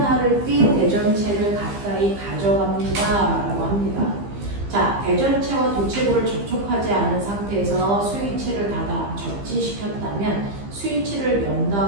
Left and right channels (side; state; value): left; late; 15 ms